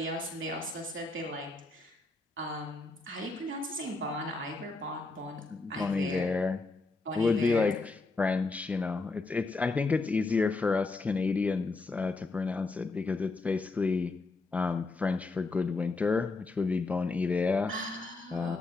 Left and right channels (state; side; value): quieter; right; 3.5 dB